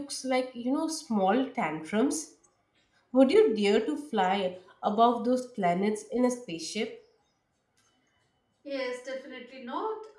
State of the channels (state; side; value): identical; both; correlation 1.00